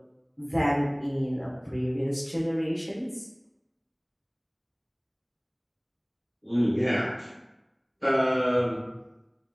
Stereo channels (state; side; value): identical; both; correlation 1.00